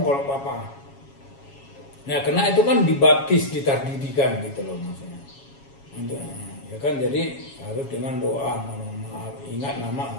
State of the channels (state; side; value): late; right; 7.3 ms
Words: kalau Papa. Nah karena itu kan dibaptis, ditardidikan gitu loh maksudnya. Ya kan jadi harus dengan doa, ingat